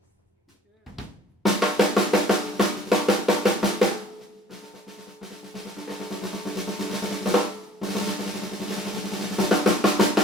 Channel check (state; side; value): normal; both; correlation 0.52